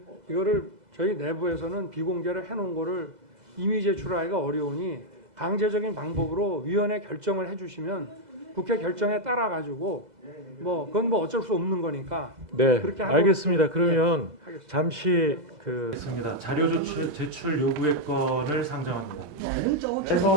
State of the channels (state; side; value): late; left; 2.0 ms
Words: 이거를 저희 내부에서는 비공개를 해놓은 거를 이미 제출하기가 어려우니 강제적인 방법으로 위원회 결정을 해주시면 국회 결정에 따라 가지고 뭐 그건 뭐 어쩔 수 없는 거니까 네, 그렇게 하고 알겠습니다. 그러면 하겠습니다. 잠시 있습니다. 자료 제출 요구의 건을 상정합니다.